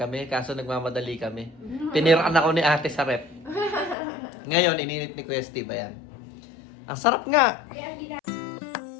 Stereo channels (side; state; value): right; drops out; at 4.0 s